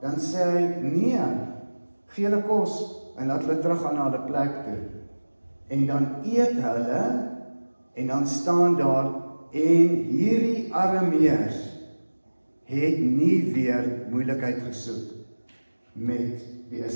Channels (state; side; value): inverted; both; correlation -1.00